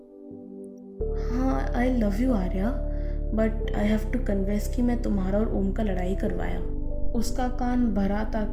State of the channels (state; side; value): identical; both; correlation 1.00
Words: हाँ, I love you Arya, but I have to confess कि मैं तुम्हारा और ओम का लड़ाई करवाया, उसका कान भरा